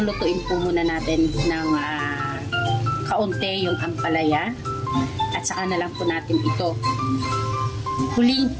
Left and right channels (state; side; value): identical; both; correlation 1.00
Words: po muna natin ng kaunti yung ampalaya. At saka na lang po natin ito huling